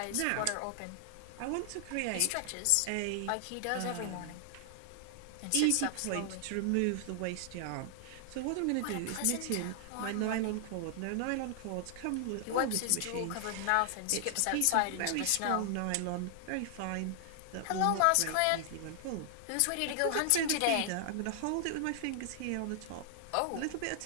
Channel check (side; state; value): both; different; correlation 0.00